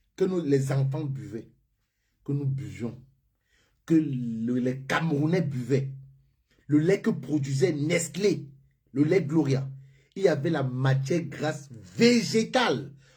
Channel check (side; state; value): both; identical; correlation 1.00